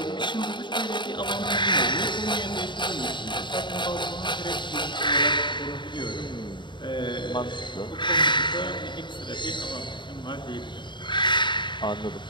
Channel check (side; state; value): right; late; 0.23 ms